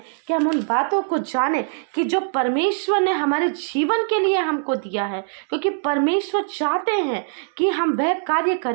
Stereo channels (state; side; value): silent; left; 64 dB below the other